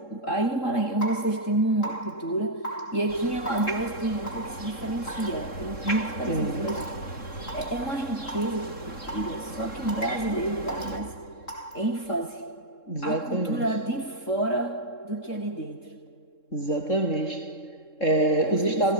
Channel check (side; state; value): right; late; 3.7 ms